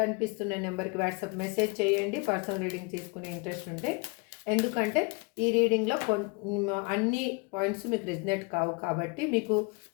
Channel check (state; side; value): quieter; right; 30.2 dB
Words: కనిపిస్తున్న నెంబర్కి వాట్సాప్ మెసేజ్ చేయండి. పర్సనల్ రీడింగ్ తీసుకునే ఇంట్రెస్ట్ ఉంటే, ఎందుకంటే ఈ రీడింగ్లో అన్ని పాయింట్స్ మీకు రిజనేట్ కావు కాబట్టి, మీకు